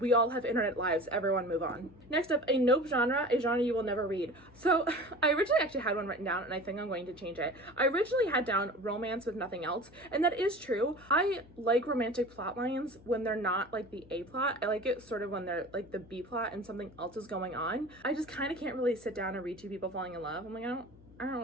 all have internet lives. Everyone move on. Next up, a nope genre, a genre you will never read. So I originally actually had one written down, and I think I'm going to change it. I originally had down romance with nothing else, and that is true. I like romantic plot lines when they're not like the A plot. I like it sort of when they're like the B plot and something else is going on. I just kind of can't really sit down and read 2 people falling in love. I'm like, I don't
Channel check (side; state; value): left; noise; hum, 24 dB below the sound